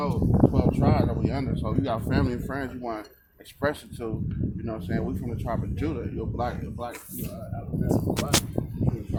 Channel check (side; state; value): both; identical; correlation 1.00